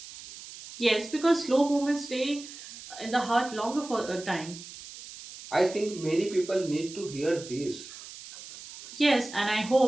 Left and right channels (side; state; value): right; noise; hiss, 15 dB below the sound